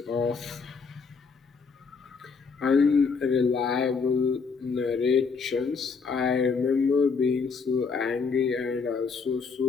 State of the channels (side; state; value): right; quieter; 5.2 dB